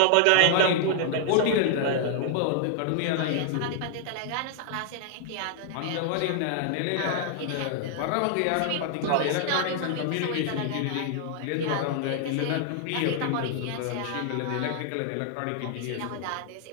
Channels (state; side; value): different; both; correlation 0.00